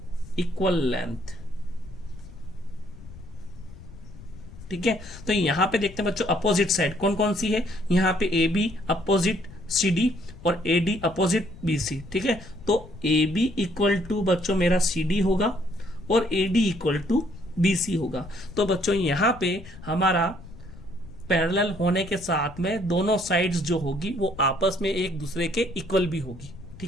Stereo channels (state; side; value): noise; left; rumble, 16 dB below the sound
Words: equal length। ठीक है, तो यहां पे देखते हैं बच्चों अपोजिट साइड कौन कौन सी है। यहां पे A B opposite C D और A D opposite B C. ठीक है, तो ए बी इक्वल टू बच्चों मेरा सी डी होगा और A D equal to BC होगा। तो बच्चों यहां पे हमारा पैरेलल होने के साथ में दोनों साइड्स जो होगी वो आपस में एक दूसरे के इक्वल भी होगी।